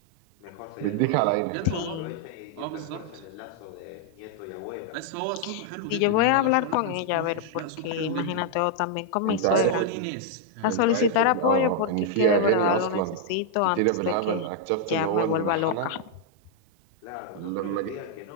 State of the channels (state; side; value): different; both; correlation -0.01